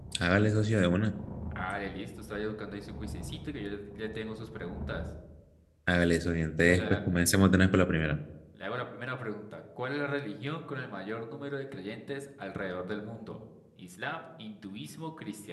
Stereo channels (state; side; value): identical; both; correlation 1.00